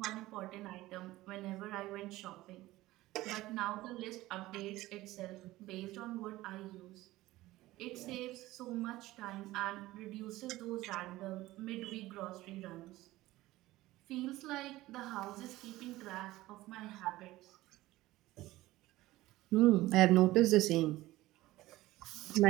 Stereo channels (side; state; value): left; quieter; 17.4 dB